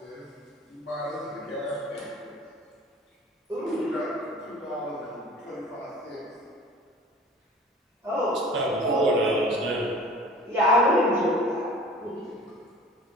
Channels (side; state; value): both; normal; correlation 0.44